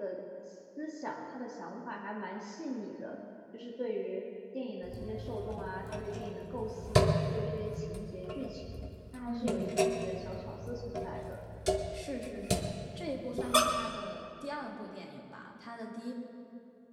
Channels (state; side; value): identical; both; correlation 1.00